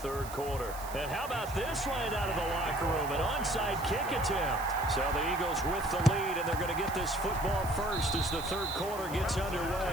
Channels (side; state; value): right; noise; hiss, 14 dB below the sound